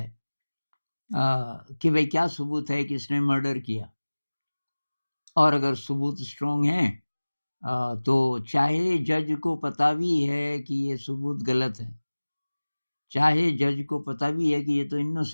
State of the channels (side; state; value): both; inverted; correlation -1.00